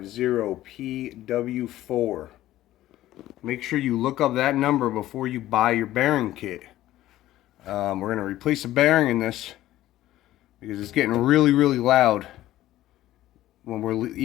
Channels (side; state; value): right; quieter; 14.6 dB